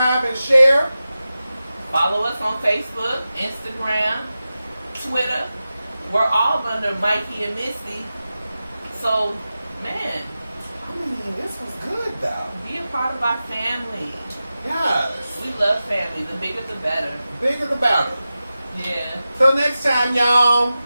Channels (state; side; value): inverted; both; correlation -0.94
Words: and share. Follow us on Facebook, Instagram, Twitter. We're all under Mikey and Misty. So, man. I mean, this was good, though. Be a part of our family. Yes. We love family. The bigger the better. Bigger the better. Yeah. Till next time, y'all.